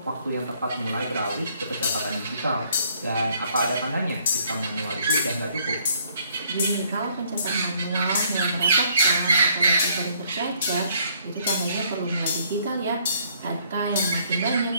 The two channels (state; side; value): inverted; both; correlation -0.65